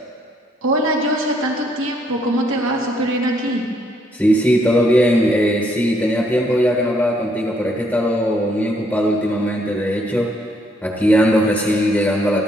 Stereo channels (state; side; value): normal; both; correlation 0.70